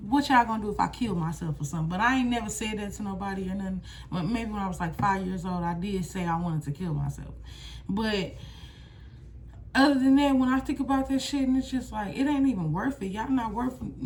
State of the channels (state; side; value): identical; both; correlation 1.00